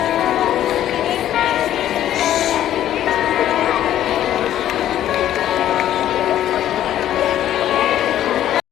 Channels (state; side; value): quieter; right; 11.9 dB